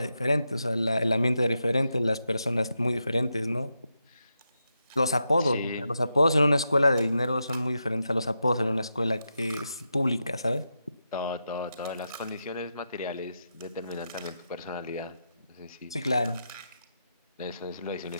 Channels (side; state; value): both; inverted; correlation -0.86